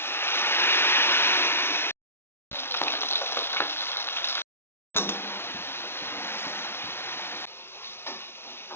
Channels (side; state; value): right; late; 0.12 ms